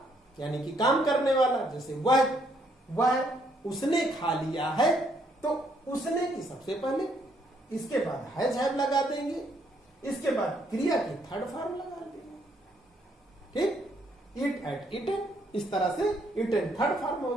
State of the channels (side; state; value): both; normal; correlation 0.70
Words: यानी कि काम करने वाला, जैसे वह उसने खा लिया है, तो उसने की सबसे पहले, इसके बाद हैज हैव लगा देंगे, इसके बाद क्रिया की थर्ड फॉर्म लगा देंगे, ठीक। इट एट इटन, इस तरह से इटन थर्ड फॉर्म हो